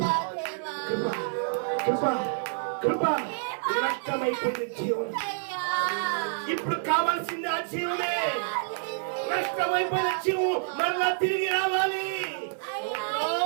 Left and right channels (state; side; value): silent; left; 59 dB below the other